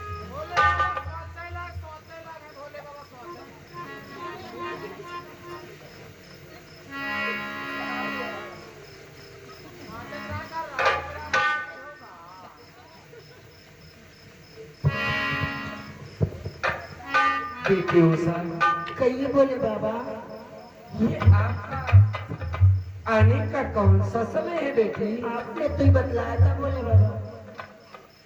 बेटी उषा, कहिए बोले बाबा। ये आपका आने का कौन सा समय है बेटी? आपने तो ही बतलाया था बोले बाबा।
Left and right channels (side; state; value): both; identical; correlation 1.00